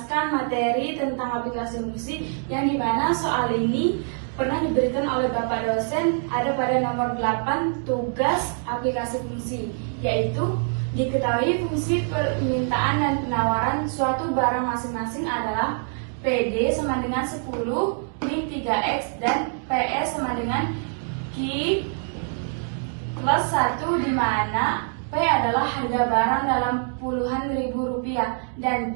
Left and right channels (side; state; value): left; silent; 55 dB below the other